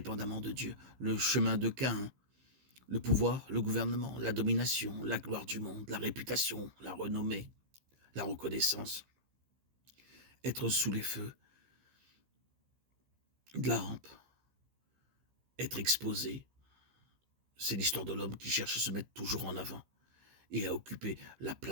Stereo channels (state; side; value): late; left; 15 ms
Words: de Dieu. Le chemin de Caïn, le pouvoir, le gouvernement, la domination, la gloire du monde, la réputation, la renommée, la reconnaissance, être sous les feux de la rampe, être exposé. C'est l'histoire de l'homme qui cherche à se mettre toujours en avant et à occuper la